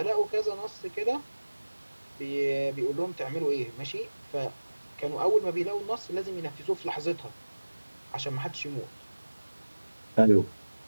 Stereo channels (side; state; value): both; inverted; correlation -1.00